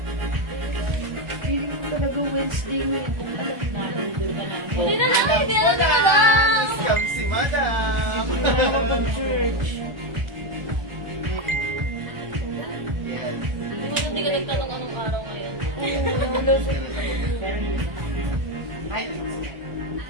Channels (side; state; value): left; late; 1.3 ms